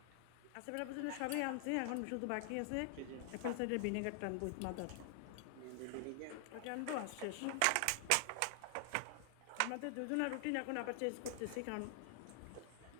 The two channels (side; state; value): both; different; correlation 0.00